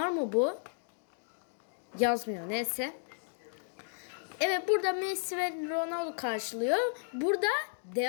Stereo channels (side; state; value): right; silent; digital silence